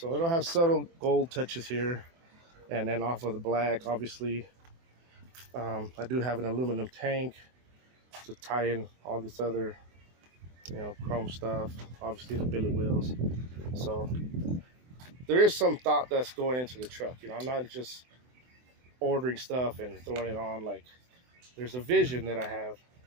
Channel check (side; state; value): left; late; 24 ms